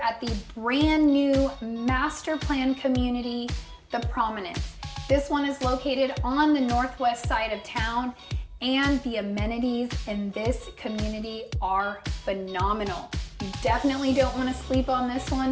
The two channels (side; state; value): both; identical; correlation 1.00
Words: at the brand new master plan community, the Prominence. This one is located on the northwest side of town, and the amenities in this community are phenomenal. You definitely don't want to sleep on this